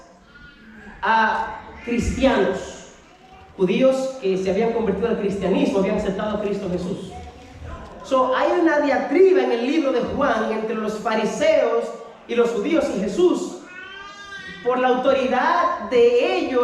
a cristianos, judíos que se habían convertido al cristianismo, habían aceptado a Cristo Jesús. Hay una diatriba en el libro de Juan entre los fariseos y los judíos y Jesús, por la autoridad de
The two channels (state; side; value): identical; both; correlation 1.00